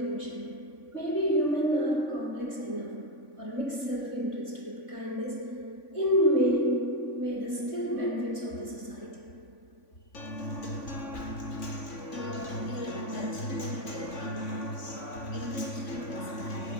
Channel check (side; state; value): right; late; 3.5 ms